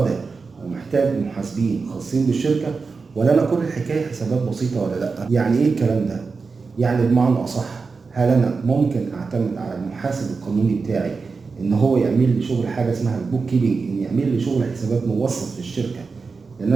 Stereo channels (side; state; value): left; quieter; 4.6 dB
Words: ومحتاج محاسبين خاصين بالشركه، ولا انا كل الحكايه حسابات بسيطه ولا لا؟ يعني ايه الكلام ده؟ يعني بمعنى اصح، هل انا ممكن اعتمد على المحاسب القانوني بتاعي ان هو يعمل لي شغل حاجه اسمها البوك كيبنج، ان يعمل لي شغل حسابات موثق في الشركه، لان